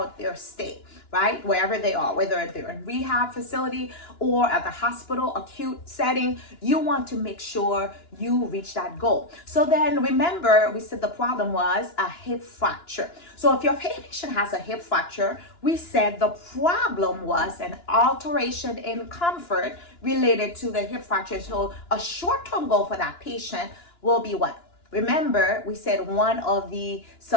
their stay, right? Wherever they are, whether they're in rehab facility or at the hospital, acute setting, you want to make sure you reach that goal. So then remember, we said the problem was a hip fracture. So if your patient has a hip fracture, we said the problem was an alteration in comfort related to the hip fracture. So a short-term goal for that patient will be what? Remember, we said one of the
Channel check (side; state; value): right; late; 2.9 ms